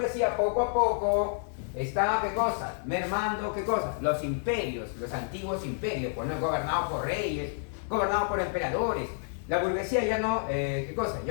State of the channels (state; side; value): silent; right; digital silence